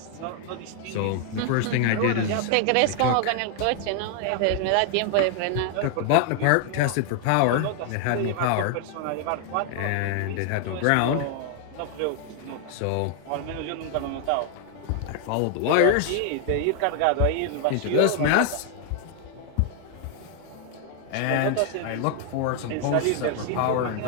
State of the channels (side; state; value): both; different; correlation 0.00